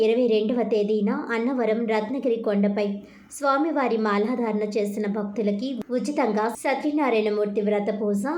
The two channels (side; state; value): both; identical; correlation 1.00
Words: 22వ తేదీన అన్నవరం రత్నగిరి కొండపై స్వామివారి మాలాధారణ చేసిన భక్తులకి ఉచితంగా సత్యనారాయణమూర్తి వ్రత పూజ,